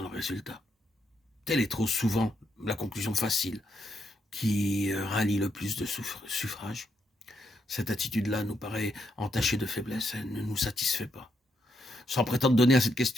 le résultat. Telle est trop souvent la conclusion facile qui rallie le plus de suffrages. Cette attitude-là nous paraît entachée de faiblesse, elle ne nous satisfait pas. Sans prétendre donner à cette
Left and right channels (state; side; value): normal; both; correlation 0.79